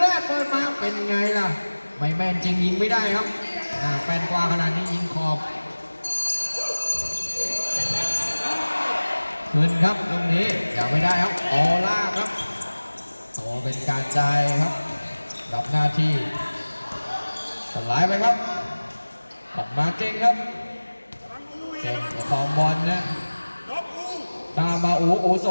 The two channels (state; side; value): inverted; both; correlation -1.00